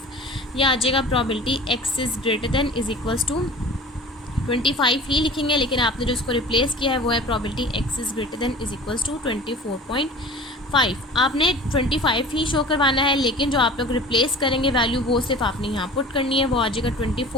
यह आ जाएगा probability x is greater than is equals to 25 ही लिखेंगे, लेकिन आपने जो इसको रिप्लेस किया है वो है probability x is greater than is equals to 24.5। आपने 25 ही शो करवाना है, लेकिन जो आप लोग रिप्लेस करेंगे वैल्यू वो सिर्फ आपने यहाँ पुट करनी है, वो आ जाएगा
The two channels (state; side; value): normal; both; correlation 0.41